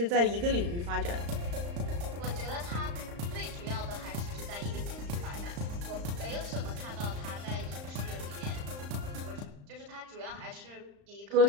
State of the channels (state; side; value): late; left; 35 ms